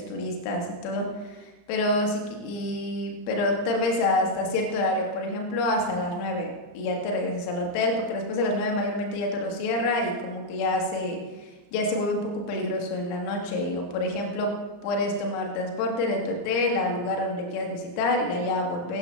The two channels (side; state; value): right; late; 35 ms